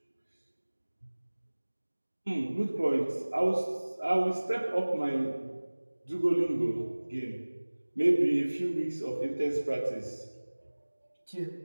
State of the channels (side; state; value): both; inverted; correlation -1.00